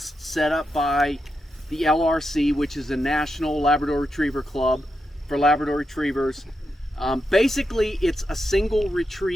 set up by the LRC, which is the National Labrador Retriever Club for Labrador Retrievers. Basically, it's a single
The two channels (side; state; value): both; normal; correlation 0.86